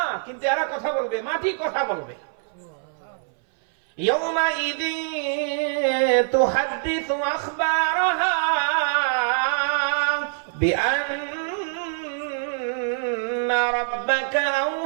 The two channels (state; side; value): silent; left; 59 dB below the other